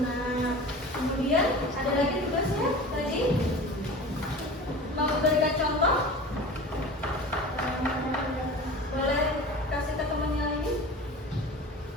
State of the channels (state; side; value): normal; both; correlation 0.36